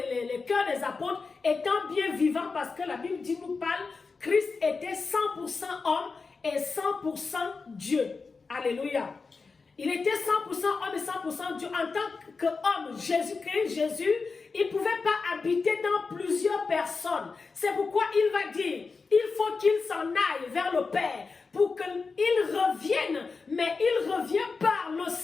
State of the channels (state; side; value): quieter; right; 4.5 dB